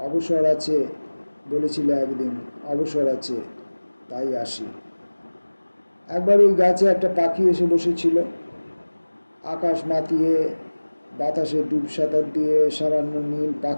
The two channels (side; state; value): both; inverted; correlation -1.00